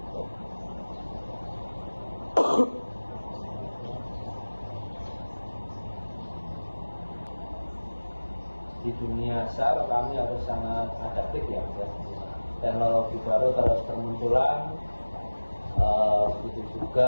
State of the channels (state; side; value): inverted; both; correlation -1.00